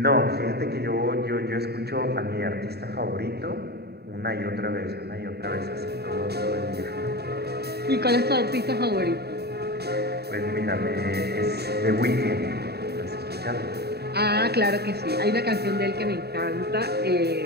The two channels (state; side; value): late; left; 0.47 ms